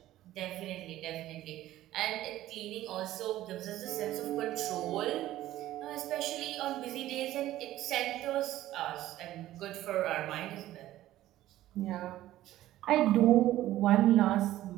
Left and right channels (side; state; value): left; quieter; 14.4 dB